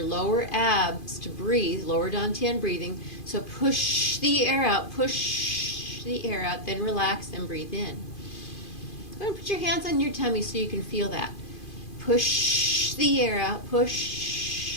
lower abs to breathe, lower dantian breathing. So push the air out, then relax and breathe in. Go ahead and put your hands on your tummy so you can feel that. Push the air out,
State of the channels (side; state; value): right; late; 2.5 ms